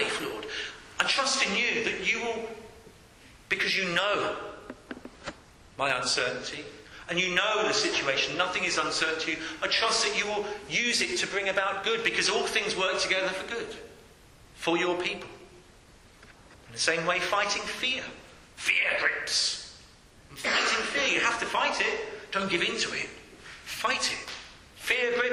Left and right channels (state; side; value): identical; both; correlation 1.00